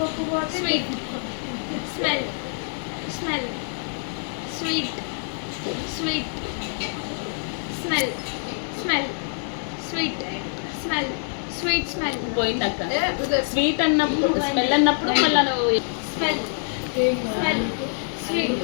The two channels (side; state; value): right; silent; digital silence